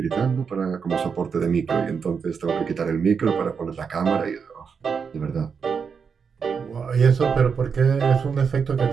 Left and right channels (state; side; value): quieter; left; 6.1 dB